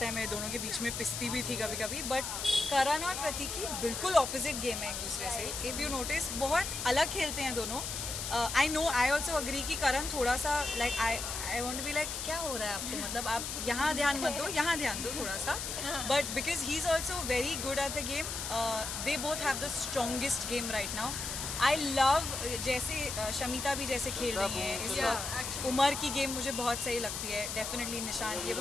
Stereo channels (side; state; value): left; noise; hiss, 4 dB below the sound